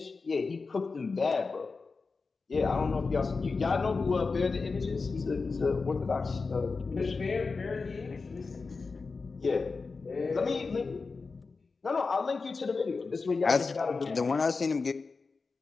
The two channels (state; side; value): quieter; right; 4.3 dB